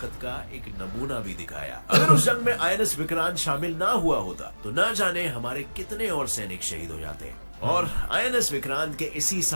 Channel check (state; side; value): inverted; both; correlation -1.00